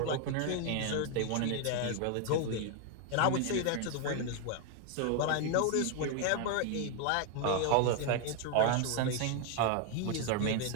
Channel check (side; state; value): both; different; correlation 0.01